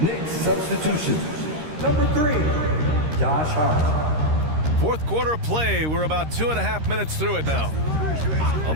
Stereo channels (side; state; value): left; late; 13 ms